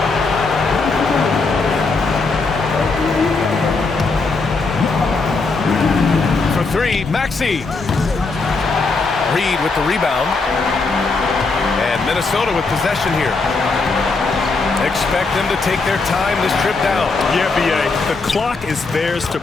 For 3, Maxey. Reed with the rebound. And Minnesota with possession here. Expect them to take their time this trip down. Yeah, B.A., the clock is theirs to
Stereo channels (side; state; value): right; quieter; 4.0 dB